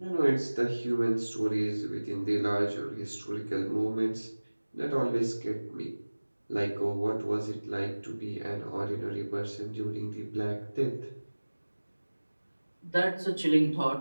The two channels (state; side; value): inverted; both; correlation -1.00